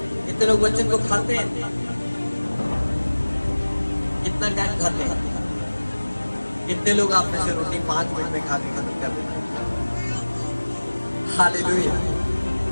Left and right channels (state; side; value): inverted; both; correlation -1.00